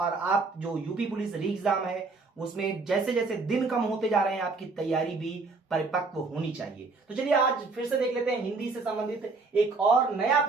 आप जो यूपी पुलिस री एग्जाम है उसमें जैसे जैसे दिन कम होते जा रहे हैं आपकी तैयारी भी परिपक्व होनी चाहिए। तो चलिए आज फिर से देख लेते हैं हिंदी से संबंधित एक और नया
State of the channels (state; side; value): quieter; left; 3.9 dB